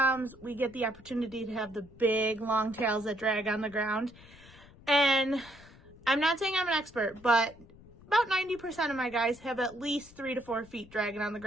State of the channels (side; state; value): left; noise; rumble, 22 dB below the sound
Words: we get the opportunity to have the big long tails that drag on the ground. And I'm not saying I'm an expert, but about 90% of my guys have at least 3 to 4 feet dragging on the